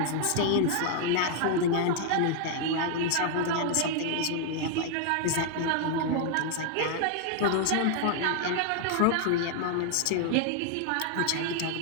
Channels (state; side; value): different; both; correlation 0.00